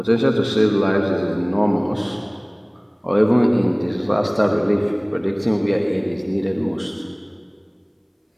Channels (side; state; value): both; identical; correlation 1.00